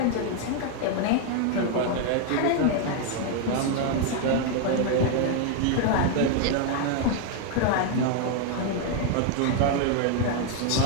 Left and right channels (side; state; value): both; different; correlation 0.00